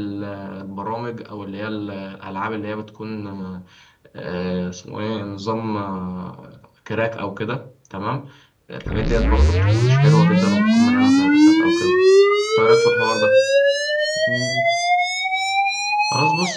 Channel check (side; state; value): both; identical; correlation 1.00